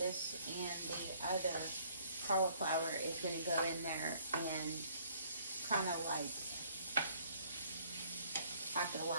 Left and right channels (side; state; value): both; inverted; correlation -0.61